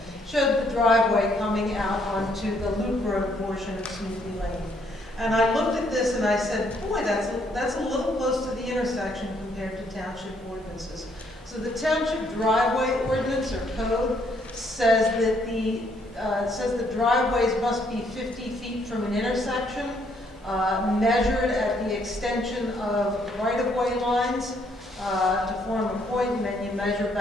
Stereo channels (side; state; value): both; normal; correlation 0.69